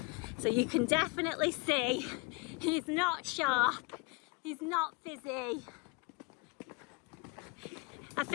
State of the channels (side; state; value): right; quieter; 28.7 dB